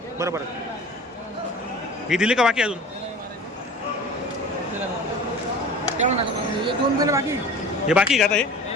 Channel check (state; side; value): normal; both; correlation 0.39